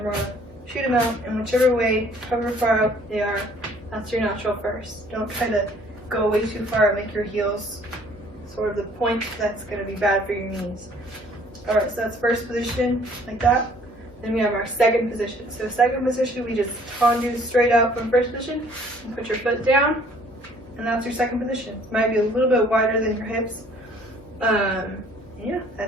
we're going to shoot them out in whichever way, however far out they are. That's your natural first. Don't try to go way too far and make your heels sort of the point. That's going to be bad for your knees. Alright, so that's first position, like that. Then we have our second position. So second position, we just tendu straight out from first position, and put your foot down, and that's your second position. It might be a little bit wider than your hips. Yeah,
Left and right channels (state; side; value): normal; both; correlation 0.57